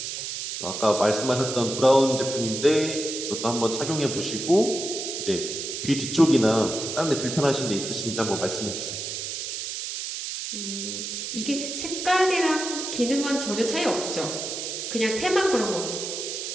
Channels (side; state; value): right; noise; hiss, 5 dB below the sound